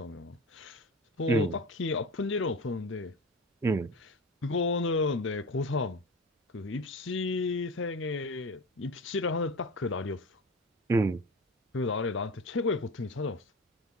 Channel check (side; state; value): both; normal; correlation 0.30